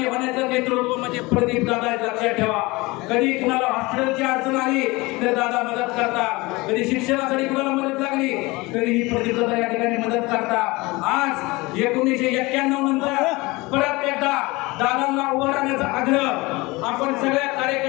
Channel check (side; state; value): right; quieter; 23.0 dB